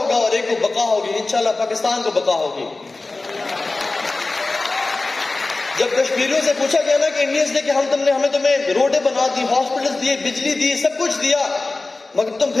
اور ایک کو بقا ہوگی. انشاءاللہ پاکستان کو بقا ہوگی. جب کشمیریوں سے پوچھا گیا نا کہ انڈینز نے کہ ہمیں تمہیں روڈیں بنا دی, ہاسپٹلز دیے, بجلی دی, سب کچھ دیا, مگر تم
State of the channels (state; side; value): quieter; right; 3.3 dB